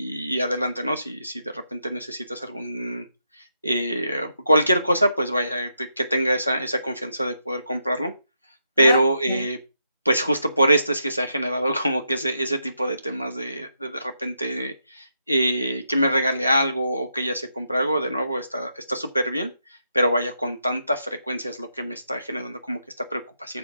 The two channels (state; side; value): inverted; both; correlation -0.81